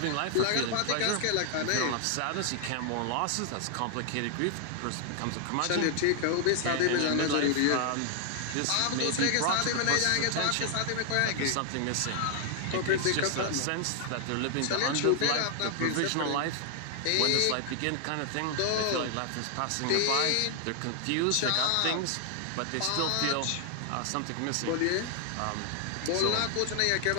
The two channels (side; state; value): both; different; correlation 0.00